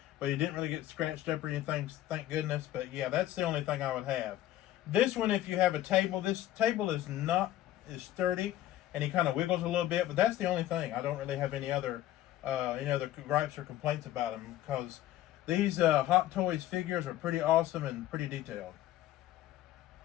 but he didn't really get scratched up or anything, thank goodness. But yeah, that's the only thing I would have. This one, if you have a table, this table is sturdy, and he kind of wiggles a little bit, but that's the only thing. I don't really have any other gripes or complaints about him, because these Hot Toys figures are pretty awesome and pretty detailed.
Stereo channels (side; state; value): right; quieter; 13.7 dB